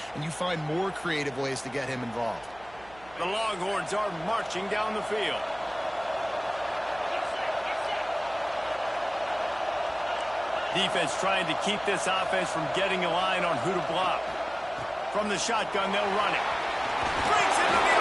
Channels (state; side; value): noise; right; hum, 23 dB below the sound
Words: and you find more creative ways to get him involved. The Longhorns are marching down the field. Defense trying to keep this offense from getting a line on who to block. From the shotgun, they'll run it. Breaks into the